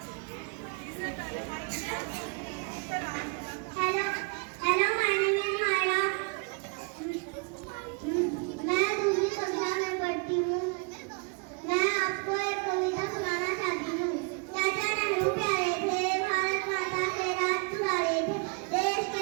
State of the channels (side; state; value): left; quieter; 34.1 dB